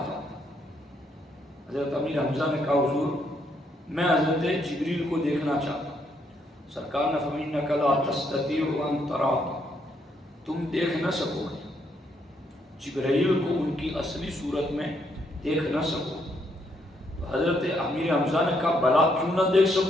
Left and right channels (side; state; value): both; normal; correlation 0.74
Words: ہوں۔ حضرت امیر حمزہ نے کہا حضور میں حضرت جبریل کو دیکھنا چاہتا ہوں۔ سرکار نے فرمایا انک لا تستطیع ان تراہ، تم دیکھ نہ سکو گے جبرائیل کو ان کی اصلی صورت میں دیکھ نہ سکو۔ تو حضرت امیر حمزہ نے کہا بلا کیوں نہ دیکھ